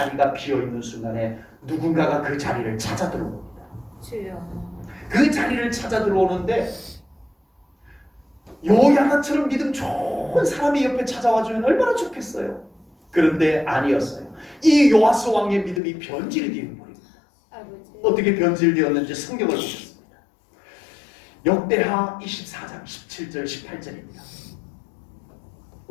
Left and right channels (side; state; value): right; drops out; at 15.8 s